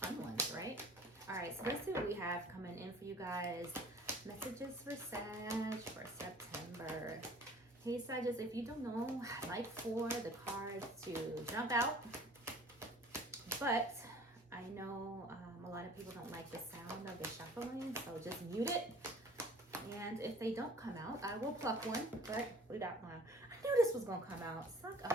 fun ones, right? All right, so let's see what we have coming in for you guys. Messages for Sag for September. Hey Sagittarius, if you don't know, I like for the cards to jump out, but I know a lot of people don't like the sound of the shuffling, so just mute it. And if they don't come out, I will pluck one, but we got one. I knew this was gonna come out. Suck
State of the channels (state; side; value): normal; both; correlation 0.49